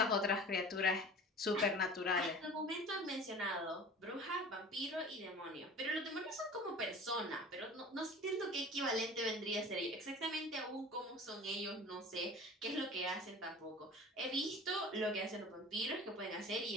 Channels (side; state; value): both; normal; correlation 0.40